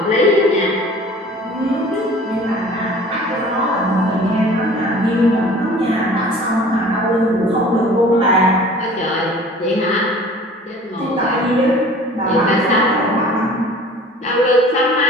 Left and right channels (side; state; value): both; normal; correlation 0.46